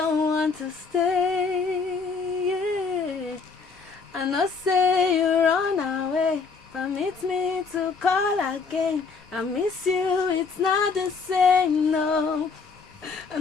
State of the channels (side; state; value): right; quieter; 4.9 dB